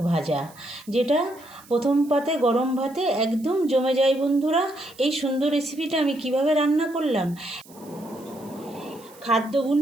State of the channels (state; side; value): noise; right; hiss, 24 dB below the sound